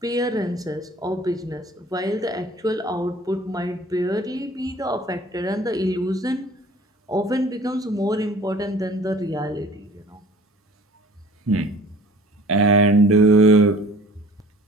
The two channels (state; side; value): normal; both; correlation 0.48